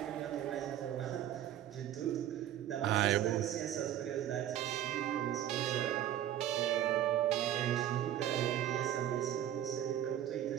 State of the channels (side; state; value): left; quieter; 11.5 dB